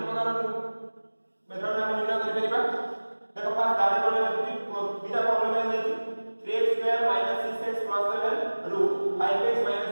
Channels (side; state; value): both; inverted; correlation -1.00